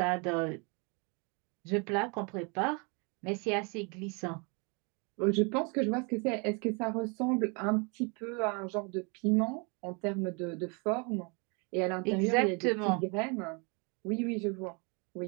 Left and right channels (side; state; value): left; quieter; 32.8 dB